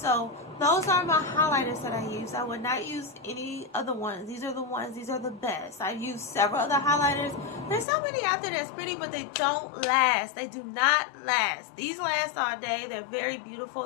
those are my highlighters that I use. I would not use any other ones. These are the ones. These are the best. I've used several other highlighters. There's so many out there that's pretty, but they don't last. They do not last. These last all day. They're very beautiful.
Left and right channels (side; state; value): right; drops out; at 7.9 s